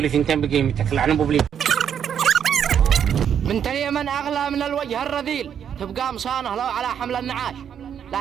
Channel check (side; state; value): left; quieter; 8.5 dB